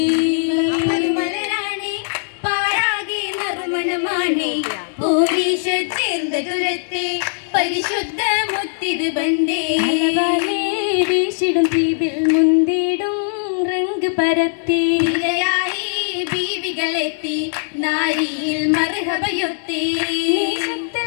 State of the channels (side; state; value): right; silent; digital silence